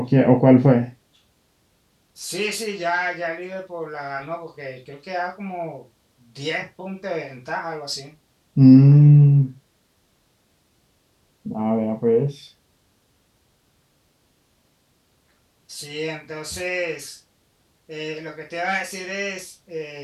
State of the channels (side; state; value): both; identical; correlation 1.00